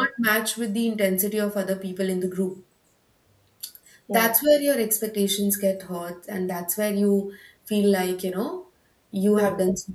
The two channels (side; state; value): both; identical; correlation 1.00